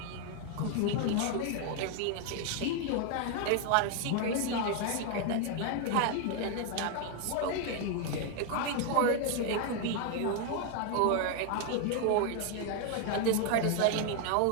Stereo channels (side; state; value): both; different; correlation 0.01